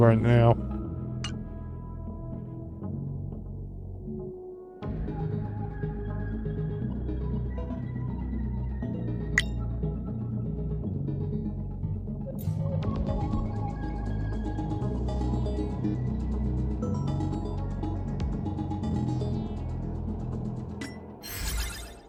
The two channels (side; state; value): both; identical; correlation 1.00